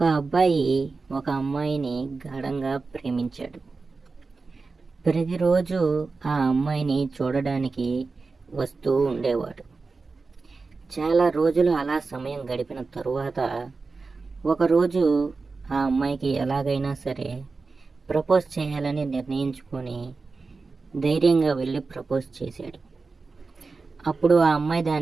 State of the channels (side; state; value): left; quieter; 4.2 dB